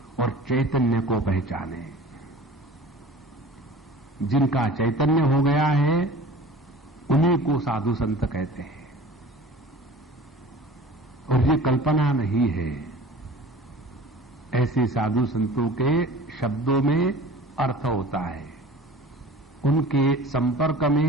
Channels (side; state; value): both; normal; correlation 0.42